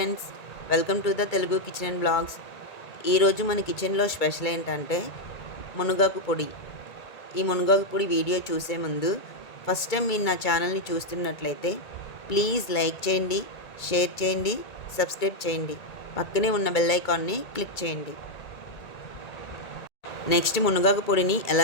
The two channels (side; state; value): right; late; 1.8 ms